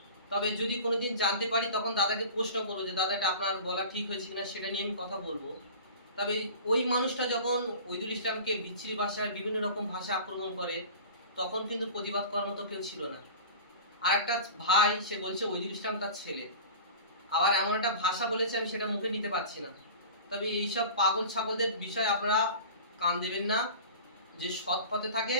তবে যদি কোনোদিন জানতে পারি তখন দাদাকে প্রশ্ন করবো যে দাদা এটা আপনার বলা ঠিক হয়েছে কিনা, সেটা নিয়ে আমি কথা বলবো। তবে ওই মানুষটা যখন ওইদুল ইসলামকে বিচ্ছিরি ভাষায় বিভিন্ন রকম ভাষা আক্রমণ করে, তখন কিন্তু প্রতিবাদ করার মতো কেউ ছিল না। আর একটা ভাই সে বলছে ওইদুল ইসলাম তার ছেলে, আবার এমন একটা ভাষা বলেছে আমি সেটা মুখে নিতে পারছি না। তবে এইসব পাগল ছাগলদের বিষয়ে আপনারা কান দেবেন না। যে সৎ পথে থাকে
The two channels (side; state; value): both; inverted; correlation -0.38